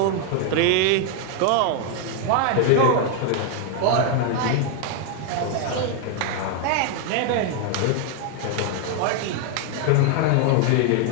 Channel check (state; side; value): different; both; correlation 0.00